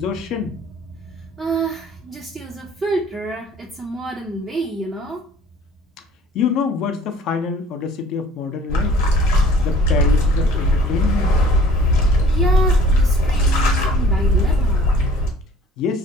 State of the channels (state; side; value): normal; both; correlation 0.51